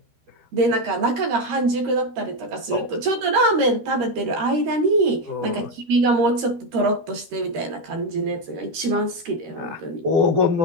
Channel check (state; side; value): late; left; 13 ms